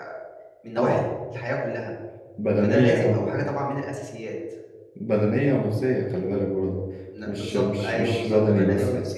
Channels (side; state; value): both; identical; correlation 1.00